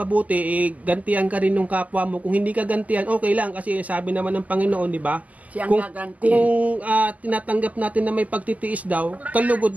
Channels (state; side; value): late; left; 0.075 ms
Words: gantihan ka rin ng kapwa mo. Kung hindi ka gantihan, okay lang. Kasi sabi naman ng Panginoon, di ba? Siyang Kung gaganti. tinatanggap natin na may pagtitiis daw,